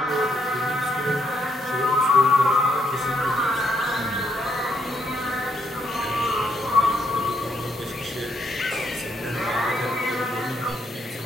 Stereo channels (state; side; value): normal; both; correlation 0.75